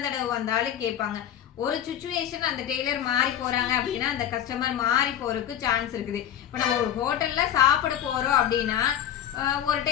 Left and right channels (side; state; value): right; quieter; 10.5 dB